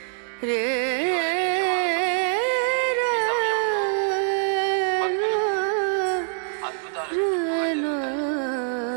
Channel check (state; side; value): silent; left; digital silence